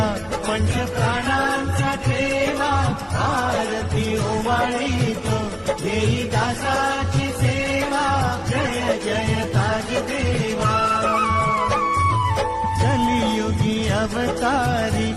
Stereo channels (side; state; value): both; identical; correlation 1.00